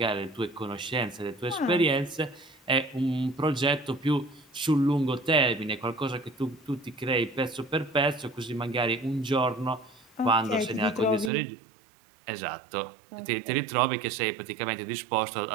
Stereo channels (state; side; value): drops out; left; at 11.3 s